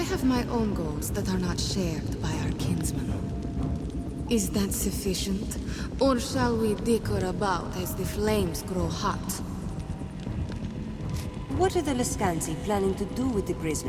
my own goals that are not shared by our kinsman. Is that sufficient? Or shall we dicker about as the flames grow hot? What are the Lescansi planning to do with the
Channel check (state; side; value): identical; both; correlation 1.00